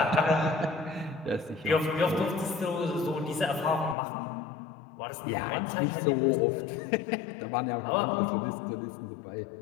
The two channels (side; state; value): right; drops out; at 4.0 s